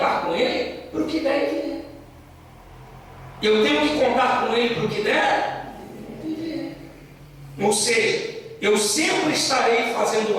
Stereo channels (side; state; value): both; identical; correlation 1.00